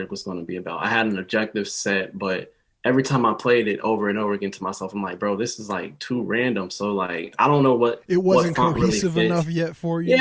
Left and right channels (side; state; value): both; identical; correlation 1.00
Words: was going to be about. I had an objective set, but every time I played it over and over again to myself, I'm like, bro, this is like too random. So like, I don't know what it wasn't what cohesive really enough yet for you.